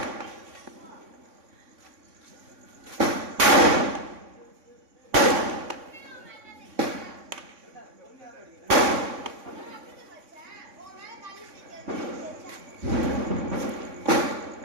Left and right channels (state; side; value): late; left; 3.6 ms